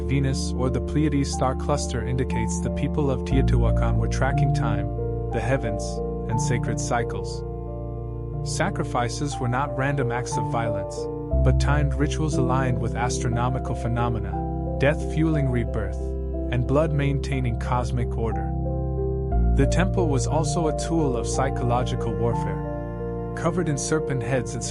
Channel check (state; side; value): identical; both; correlation 1.00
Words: Venus or the Pleiades star cluster indicates the people of Teotihuacan were tracking time, the heavens, and sacred cycles. Sacrifices were not random acts of violence, but timed rituals aligned with astronomical phenomena, death fueling rebirth, and blood maintaining cosmic order. The temple was also a tool of psychological warfare. Covered in serpent heads and